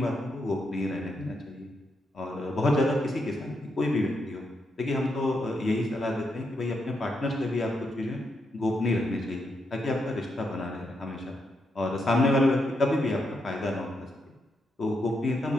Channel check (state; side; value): normal; both; correlation 0.81